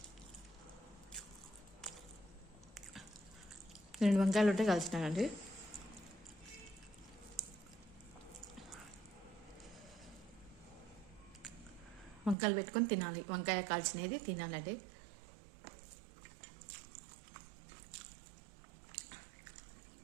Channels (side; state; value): left; drops out; at 12.4 s